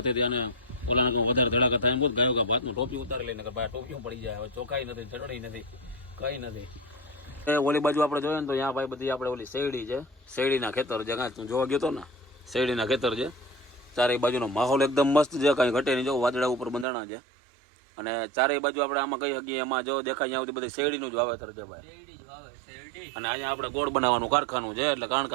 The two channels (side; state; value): left; drops out; at 16.9 s